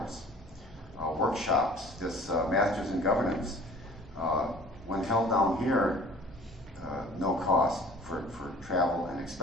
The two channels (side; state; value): both; normal; correlation 0.47